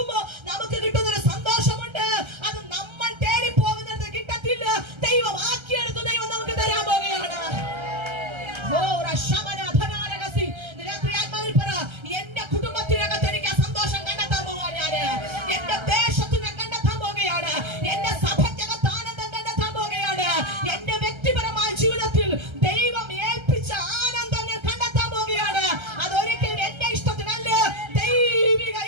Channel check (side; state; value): left; late; 1.3 ms